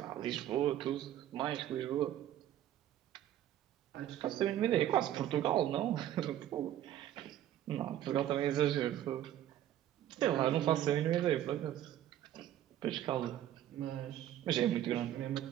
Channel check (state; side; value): quieter; left; 12.0 dB